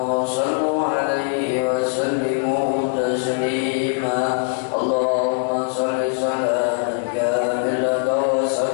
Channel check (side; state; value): right; silent; 65 dB below the other